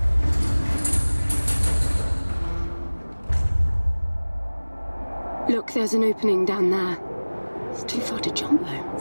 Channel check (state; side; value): inverted; both; correlation -1.00